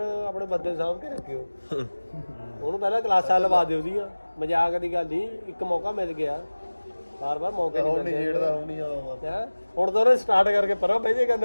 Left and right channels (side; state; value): both; inverted; correlation -1.00